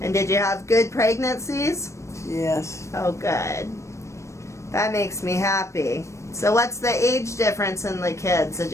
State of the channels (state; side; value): late; right; 0.14 ms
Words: And did you have good pregnancies? Yes. Oh, good. That makes me happy. So what's the age difference in the kids? Did